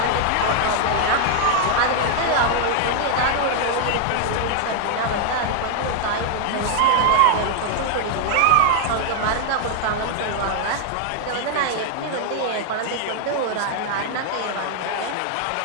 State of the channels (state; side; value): different; both; correlation 0.00